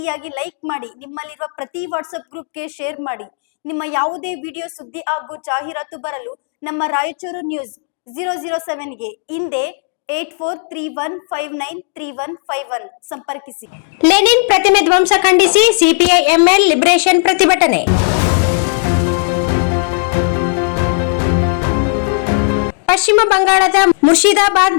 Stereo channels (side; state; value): right; silent; digital silence